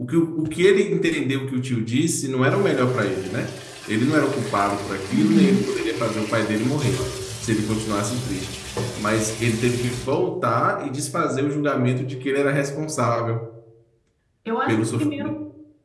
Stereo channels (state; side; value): identical; both; correlation 1.00